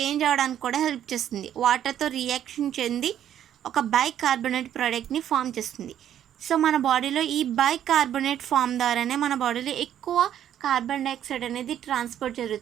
అవ్వడానికి కూడా హెల్ప్ చేస్తుంది. వాటర్తో రియాక్షన్ చెంది ఒక బైకార్బోనేట్ ప్రోడక్ట్ని ఫామ్ చేస్తుంది. సో మన బాడీలో ఈ బైకార్బోనేట్ ఫామ్ ద్వారానే మన బాడీలో ఎక్కువ కార్బన్ డైఆక్సైడ్ అనేది ట్రాన్స్పోర్ట్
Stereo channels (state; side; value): quieter; left; 10.5 dB